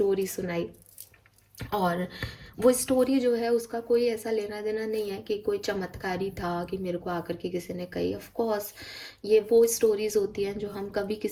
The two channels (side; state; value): both; identical; correlation 1.00